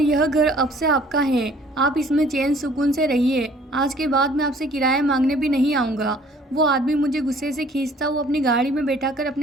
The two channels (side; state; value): both; normal; correlation 0.55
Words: घर अब से आपका है, आप इसमें चैन सुकून से रहिए। आज के बाद मैं आपसे किराया मांगने भी नहीं आऊँगा। वो आदमी मुझे गुस्से से खींचता हुआ अपनी गाड़ी में बैठाकर